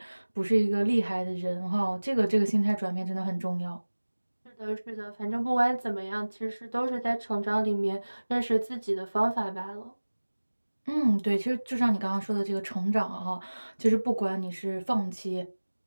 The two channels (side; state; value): both; inverted; correlation -1.00